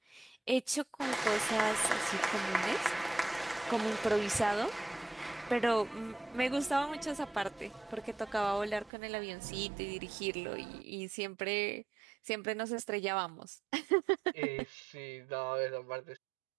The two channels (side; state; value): left; drops out; at 8.9 s